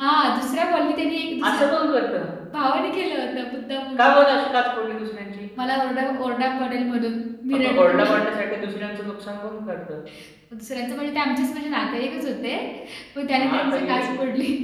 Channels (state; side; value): identical; both; correlation 1.00